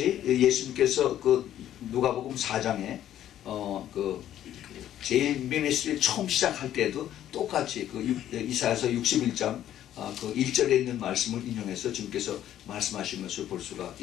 예수님께서 그 누가복음 4장에 제일 미니스트리 처음 시작할 때도 똑같이 이사야서 61장 그 1절에 있는 말씀을 인용해서 주님께서 말씀하신 것을 볼 수가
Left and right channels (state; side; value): quieter; right; 11.6 dB